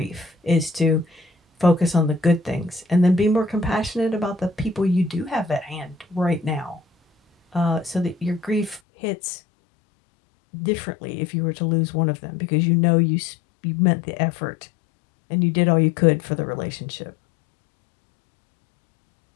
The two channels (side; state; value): right; drops out; at 8.8 s